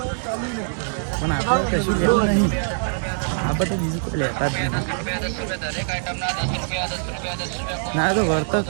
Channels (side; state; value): left; silent; digital silence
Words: પણ આપણે કશું લેવું નહીં, આપણે તો બીજું કોઈ લેતા જ નહીં. ના તો વળતો